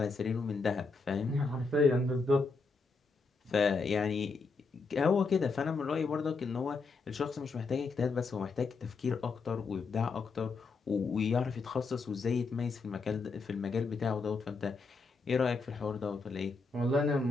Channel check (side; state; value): right; quieter; 4.2 dB